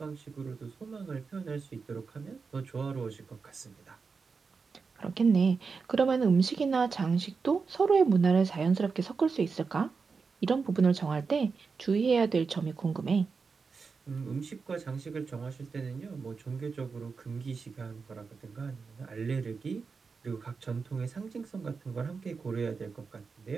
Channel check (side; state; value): left; quieter; 5.0 dB